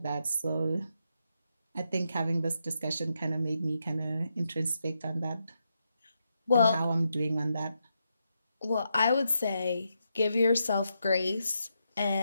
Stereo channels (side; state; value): both; inverted; correlation -0.83